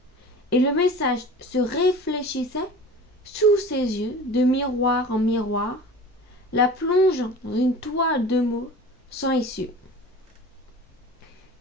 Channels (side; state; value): both; normal; correlation 0.38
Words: et le message se réfléchissait sous ses yeux de miroir en miroir, la plongeant dans une toile de mots sans issue,